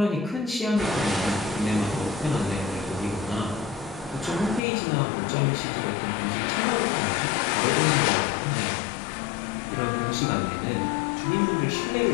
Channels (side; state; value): right; drops out; at 4.6 s